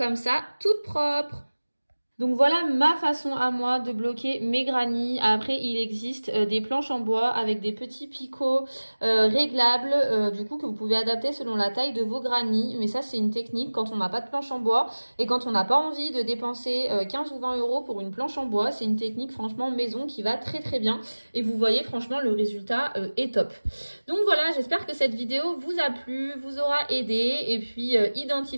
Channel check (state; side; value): inverted; both; correlation -1.00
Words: ça, toute propre. Donc voilà ma façon à moi de bloquer mes granny. Après, il existe des planches en bois avec des petits picots réglables, du coup que vous pouvez adapter selon la taille de vos granny. Mais ça, c'est une technique quand on n'a pas de planche en bois et quand on n'a pas envie de dépenser 15 ou 20 € pour une planche en bois. C'est une technique franchement maison qui va très très bien. Et vous voyez franchement le résultat est top. Donc voilà, j'espère que cette vidéo vous a plu, vous aura aidé. Et puis